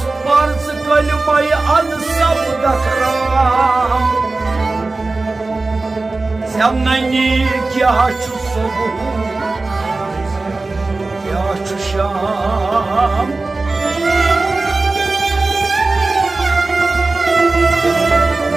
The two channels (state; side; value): quieter; left; 3.4 dB